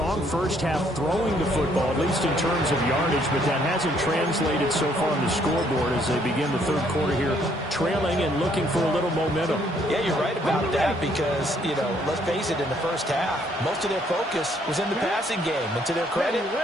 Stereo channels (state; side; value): normal; both; correlation 0.67